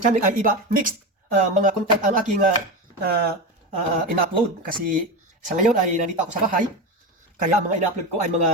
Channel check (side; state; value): both; normal; correlation 0.20